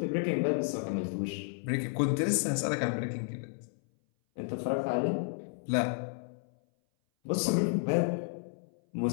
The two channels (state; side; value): silent; right; 56 dB below the other